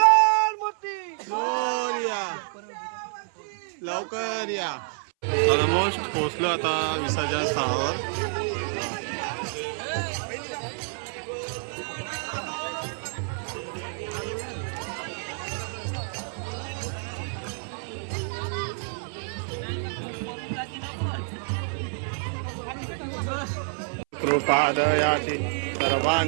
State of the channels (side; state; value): left; silent; 59 dB below the other